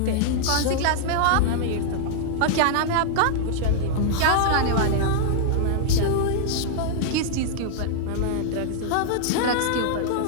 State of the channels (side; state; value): both; different; correlation -0.01